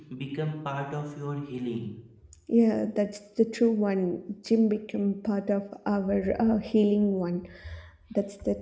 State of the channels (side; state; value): both; identical; correlation 1.00